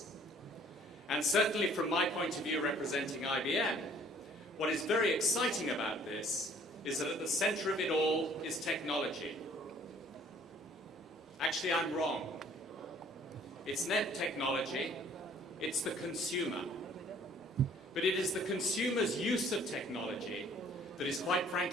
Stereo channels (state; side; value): normal; both; correlation 0.56